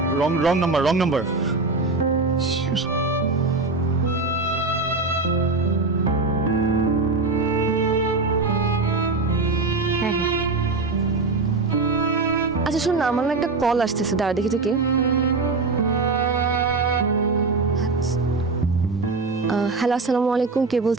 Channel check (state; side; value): quieter; left; 3.8 dB